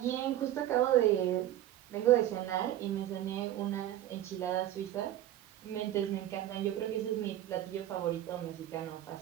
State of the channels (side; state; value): left; quieter; 12.8 dB